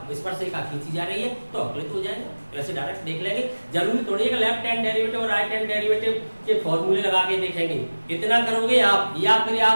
स्पर्शिका खींची जा रही है तो अवकलित हो जाएगा। वैसे डायरेक्ट देख लेंगे, जरूरी थोड़ी है कि लेफ्ट हैंड डेरिवेटिव और राइट हैंड डेरिवेटिव के फॉर्मूले लगा के देखेंगे। इतना करोगे आप, या फिर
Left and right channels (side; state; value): both; inverted; correlation -1.00